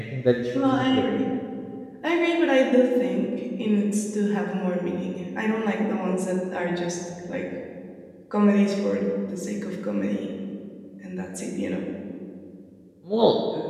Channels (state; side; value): identical; both; correlation 1.00